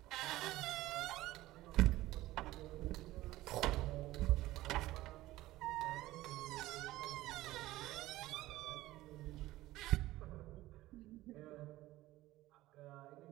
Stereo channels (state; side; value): quieter; left; 16.8 dB